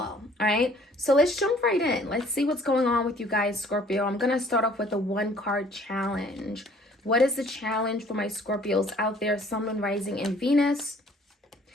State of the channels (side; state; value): both; normal; correlation 0.57